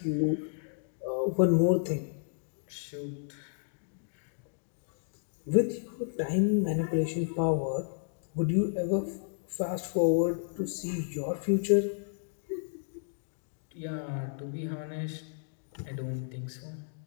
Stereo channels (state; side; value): silent; right; digital silence